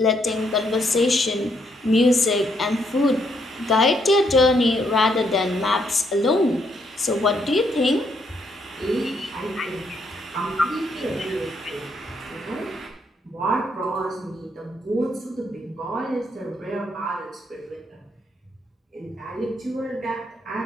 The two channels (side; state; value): both; normal; correlation 0.74